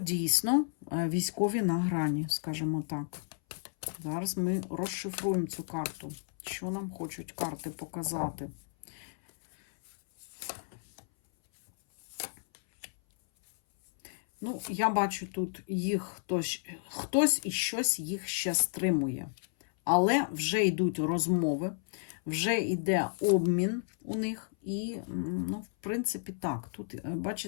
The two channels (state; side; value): silent; right; 56 dB below the other